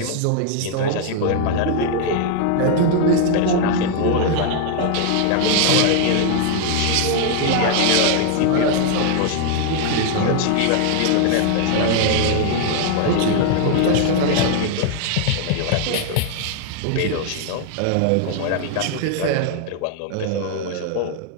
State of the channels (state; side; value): different; both; correlation 0.00